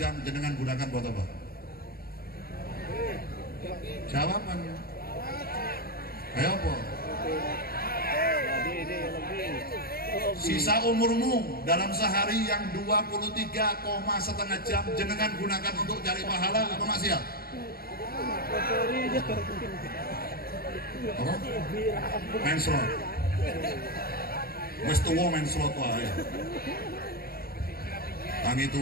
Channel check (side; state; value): right; late; 0.44 ms